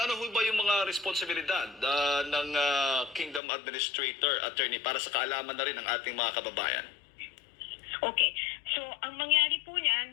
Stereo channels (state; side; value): drops out; right; at 3.4 s